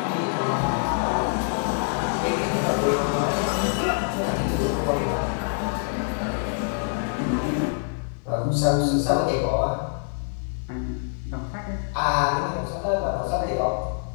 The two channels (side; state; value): right; silent; digital silence